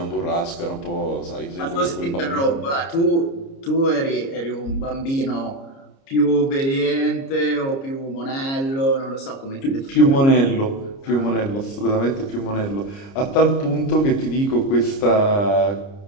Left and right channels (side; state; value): right; late; 29 ms